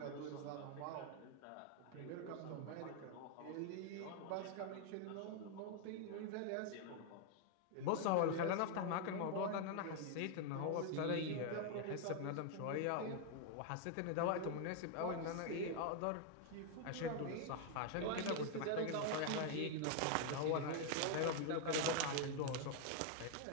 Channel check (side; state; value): both; different; correlation 0.00